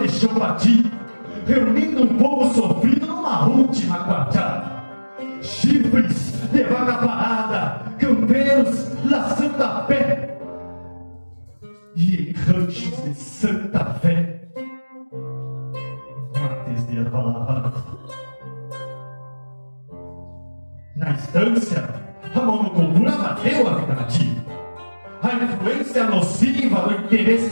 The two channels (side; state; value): both; inverted; correlation -1.00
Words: chão batido, reunindo um povo sofrido numa última quartada. Chifres de vaga parada, campeiros laçando a pé, e em ranchos de Santa Fé, mates de erva lavada. Na estância, a monocultura bateu a vida nativa. A influência nociva do